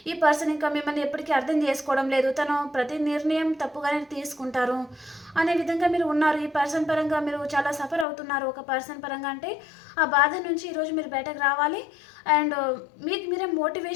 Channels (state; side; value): drops out; right; at 8.1 s